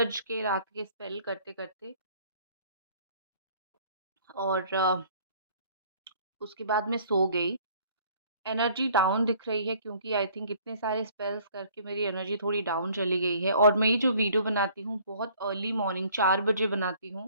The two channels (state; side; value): inverted; both; correlation -0.56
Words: के रात के स्पेल करते-करते, और उसके बाद मैं सो गई। एनर्जी डाउन दिख रही है, क्योंकि आई थिंक इतने सारे स्पेल्स करके मेरी एनर्जी थोड़ी डाउन चली गई है, और मैं ये जो वीडियो बनाती हूँ बहुत अर्ली मॉर्निंग 4 बजे बनाती